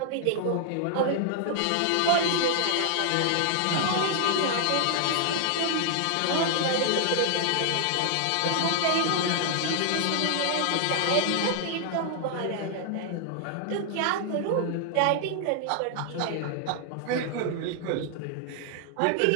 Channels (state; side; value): different; both; correlation 0.00